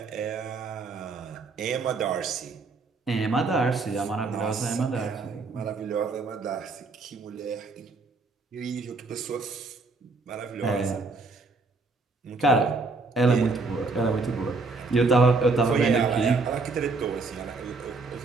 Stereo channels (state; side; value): quieter; left; 3.8 dB